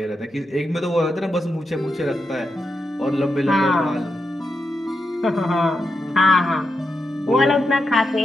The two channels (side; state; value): both; normal; correlation 0.86